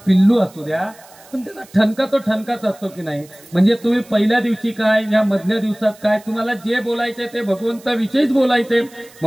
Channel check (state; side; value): noise; right; hiss, 24 dB below the sound